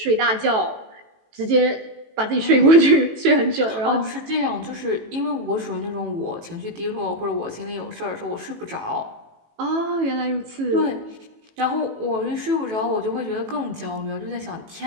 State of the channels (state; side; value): late; left; 18 ms